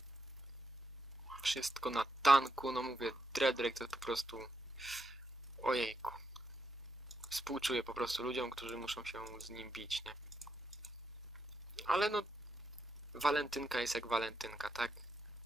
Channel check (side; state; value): both; normal; correlation 0.82